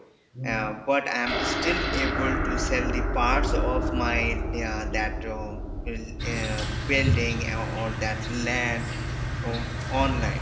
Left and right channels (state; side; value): identical; both; correlation 1.00